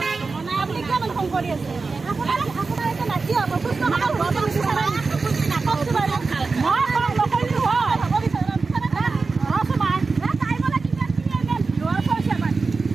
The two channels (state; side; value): quieter; left; 4.2 dB